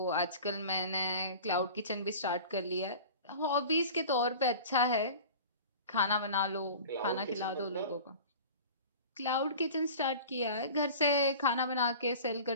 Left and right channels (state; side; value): inverted; both; correlation -0.39